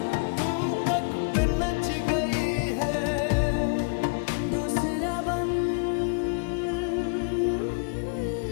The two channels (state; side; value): quieter; right; 37.3 dB